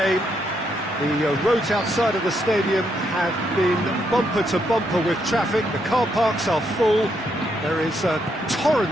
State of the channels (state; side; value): normal; both; correlation 0.77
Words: The roads outside of the stadium have been bumper to bumper with traffic. The car parks are full. There is a